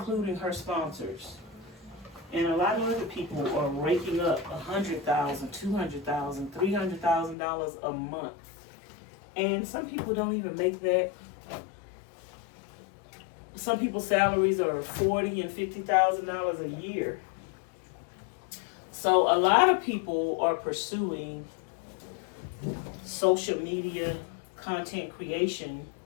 her sponsors. And a lot of other people are raking up $100,000, $200,000, $300,000 a month. And some people don't even make that. Some people's salaries are $40,000 and $50,000 a year. So a lot of people are pursuing social media content creation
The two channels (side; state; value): right; drops out; at 7.4 s